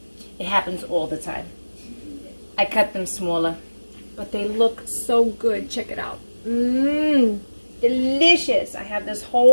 It happens all the time. I cut them smaller, but they look so good. Check it out. Delicious. I have this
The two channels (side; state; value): both; inverted; correlation -1.00